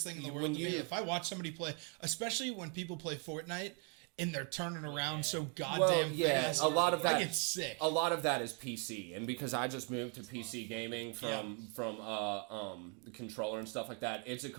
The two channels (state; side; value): quieter; left; 33.4 dB